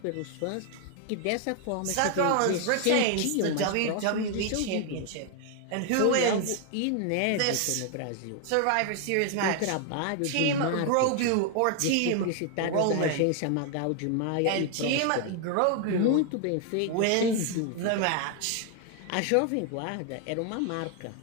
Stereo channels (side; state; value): both; different; correlation 0.00